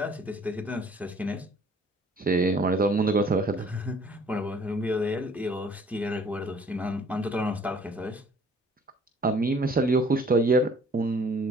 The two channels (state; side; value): normal; both; correlation 0.55